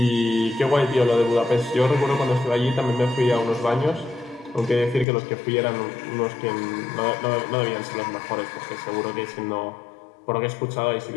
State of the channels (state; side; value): drops out; right; at 5.1 s